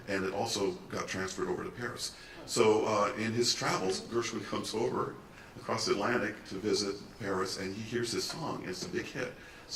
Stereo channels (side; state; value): both; identical; correlation 1.00